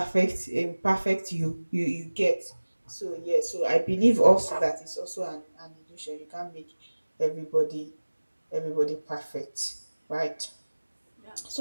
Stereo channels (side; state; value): both; inverted; correlation -1.00